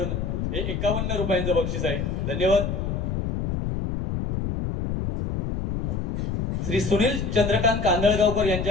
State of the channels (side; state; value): left; noise; rumble, 2 dB below the sound